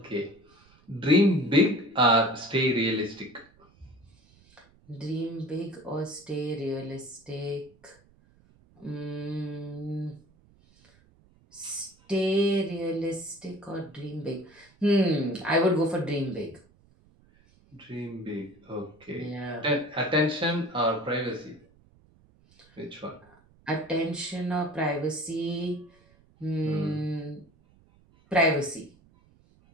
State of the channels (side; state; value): right; noise; rumble, 30 dB below the sound